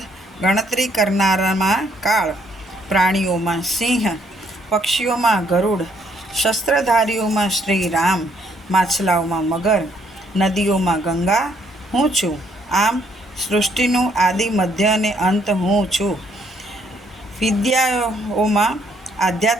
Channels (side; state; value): both; normal; correlation 0.68